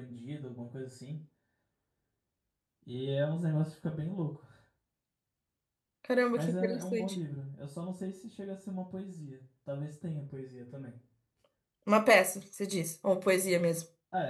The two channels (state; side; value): identical; both; correlation 1.00